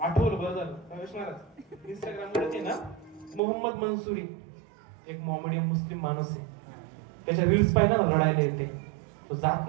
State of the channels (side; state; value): left; drops out; at 3.4 s